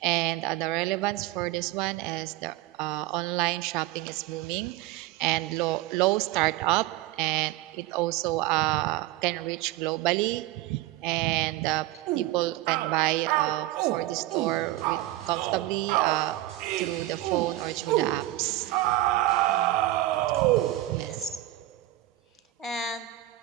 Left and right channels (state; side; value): quieter; left; 16.3 dB